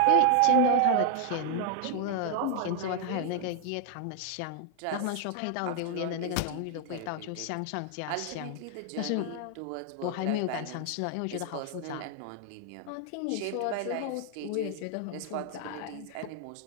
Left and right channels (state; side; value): different; both; correlation 0.00